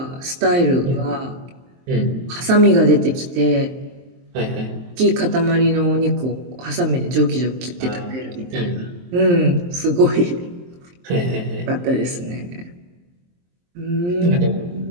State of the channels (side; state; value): left; late; 23 ms